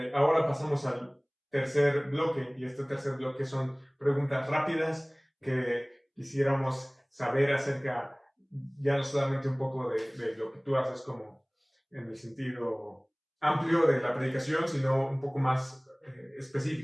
ahora pasamos al tercer bloque, y este tercer bloque son preguntas rápidas que quisiéramos saber acerca, ya no solamente un poco de lo que tú haces como en el sentido amplio de la predicación, sino un poco más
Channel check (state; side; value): identical; both; correlation 1.00